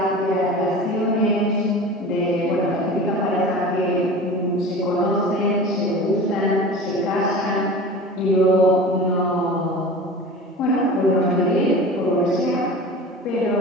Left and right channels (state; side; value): normal; both; correlation 0.36